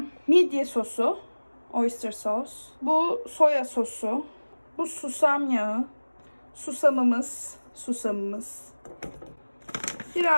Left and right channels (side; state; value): both; inverted; correlation -1.00